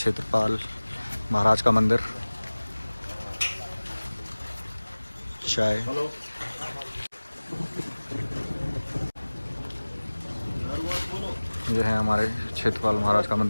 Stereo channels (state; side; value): inverted; both; correlation -1.00